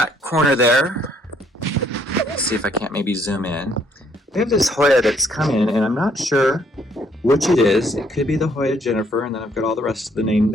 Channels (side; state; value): both; normal; correlation 0.67